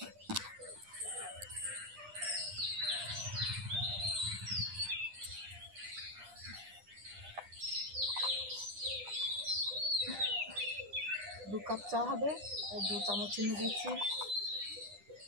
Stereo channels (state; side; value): late; left; 9.9 ms